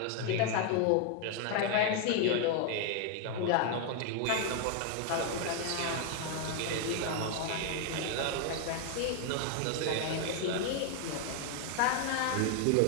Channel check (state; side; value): different; both; correlation 0.00